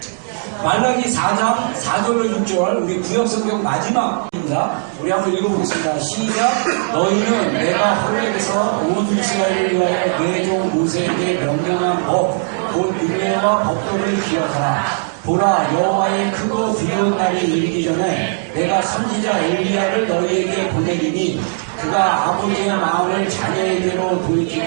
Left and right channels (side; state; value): left; silent; digital silence